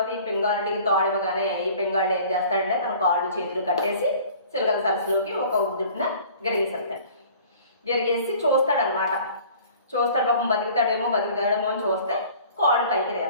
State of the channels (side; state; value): both; inverted; correlation -0.48